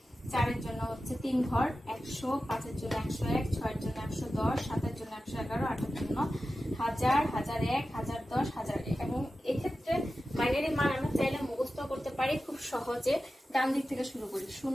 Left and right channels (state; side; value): normal; both; correlation 0.93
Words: 4 এর জন্য হচ্ছে 3 ঘর 100, 5 এর জন্য 101, 6 এর জন্য 110, 7 এর জন্য 111, 8 এর জন্য 1000, 1001, 1010, 1001। এবং এক্ষেত্রে বাইনারি মান আমরা চাইলে মুখস্থ করতে পারি খুব সহজে। ডান দিক থেকে শুরু করি,